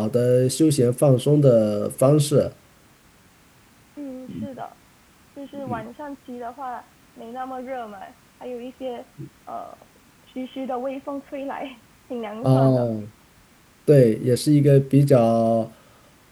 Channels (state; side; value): identical; both; correlation 1.00